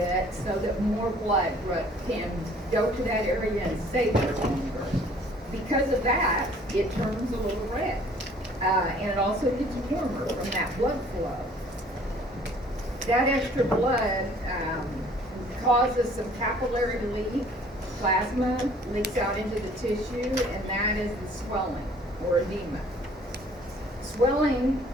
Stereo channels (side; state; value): both; normal; correlation 0.55